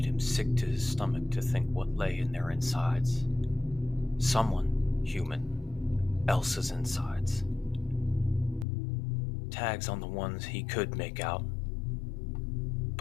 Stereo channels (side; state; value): right; drops out; at 8.7 s